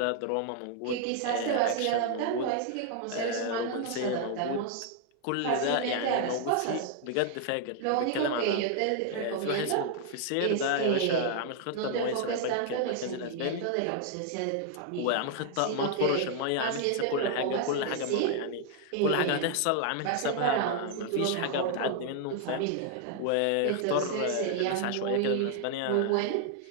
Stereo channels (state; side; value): different; both; correlation 0.00